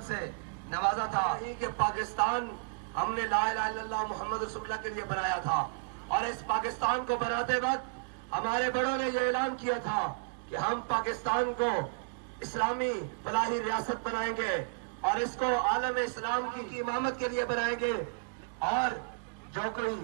से नवाजा था। कि पाकिस्तान हमने ला इलाहा इल्लल्लाह मुहम्मद रसूलुल्लाह के लिए बनाया था, और इस पाकिस्तान को बनाते वक्त हमारे बड़ों ने यह ऐलान किया था कि हम पाकिस्तान को इस्लामी फलाही रियासत बनाएंगे और इसको आलम इस्लाम की इमामत के लिए बनाएंगे। और जो कोई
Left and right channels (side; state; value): left; quieter; 37.4 dB